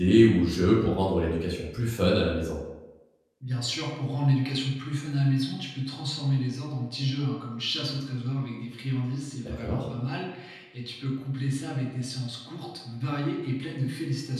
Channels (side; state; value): both; identical; correlation 1.00